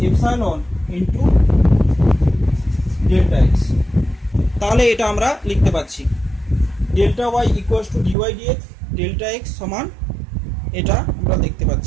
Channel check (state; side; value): drops out; left; at 8.2 s